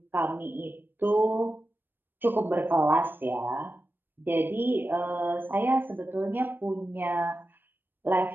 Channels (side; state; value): left; late; 0.095 ms